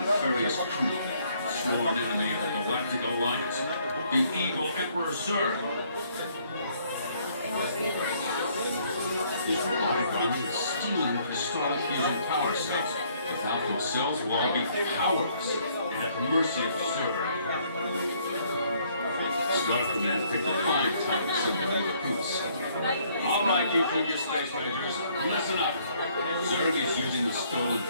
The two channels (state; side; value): inverted; both; correlation -0.65